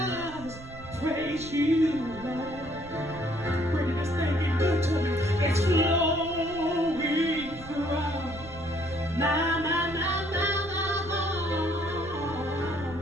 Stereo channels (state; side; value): noise; right; rumble, 16 dB below the sound